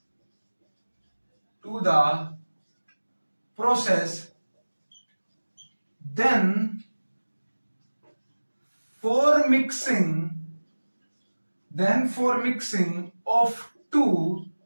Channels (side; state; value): both; inverted; correlation -1.00